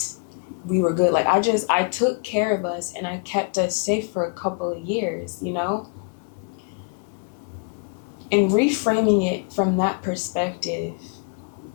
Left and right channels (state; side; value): quieter; right; 36.5 dB